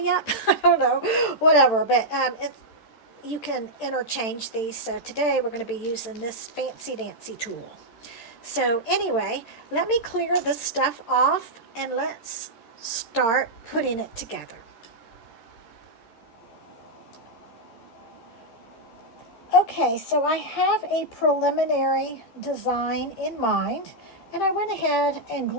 up, I don't know, whatever, but you can interchange these. So today we're going to be using this fancy dancy tool. So anyway, let me clear this stuff off and let's start putting it together. Okay, so I have a preliminary design in mind, and I went ahead and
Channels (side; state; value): right; late; 13 ms